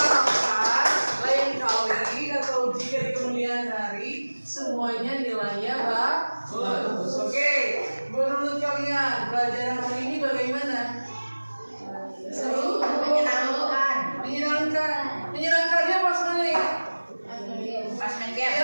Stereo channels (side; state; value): both; inverted; correlation -1.00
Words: lain kali atau jika di kemudian hari semuanya nilainya bagus. Oke, menurut kalian pelajaran hari ini bagaimana? Seru? Menyenangkan. Menyenangkan. Menyenangkannya pas mana ya? Pas main